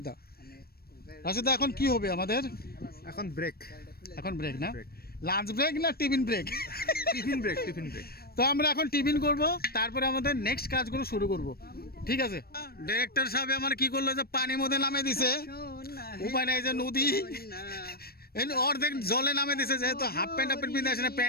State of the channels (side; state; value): right; late; 0.44 ms